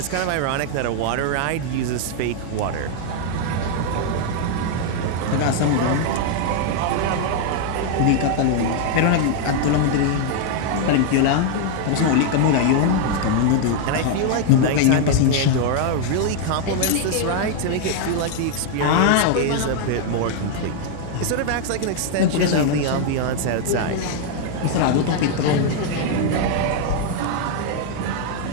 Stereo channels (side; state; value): both; different; correlation 0.00